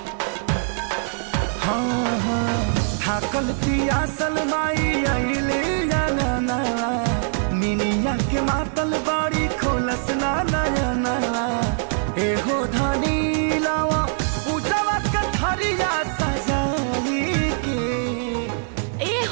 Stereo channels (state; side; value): silent; left; digital silence